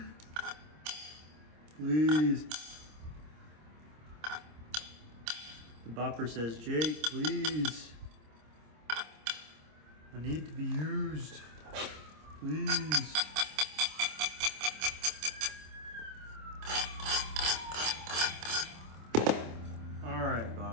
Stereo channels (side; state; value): left; late; 26 ms